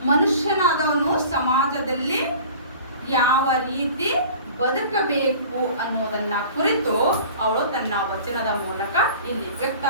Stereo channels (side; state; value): both; inverted; correlation -0.43